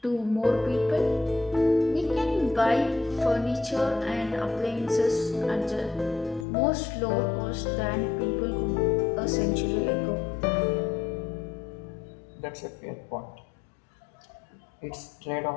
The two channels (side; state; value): right; drops out; at 6.5 s